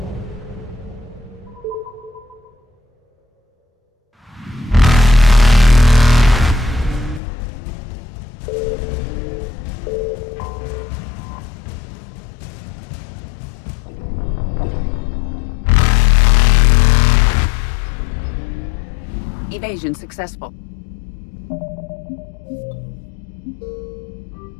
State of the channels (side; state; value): right; drops out; at 7.2 s